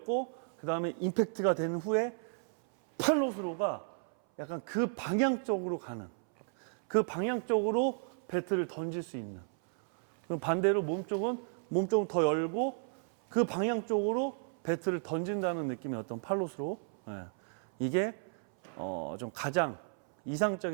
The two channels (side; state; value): left; silent; 56 dB below the other